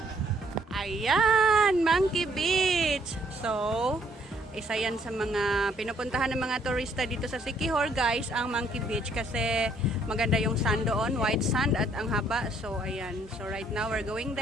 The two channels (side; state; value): both; normal; correlation 0.66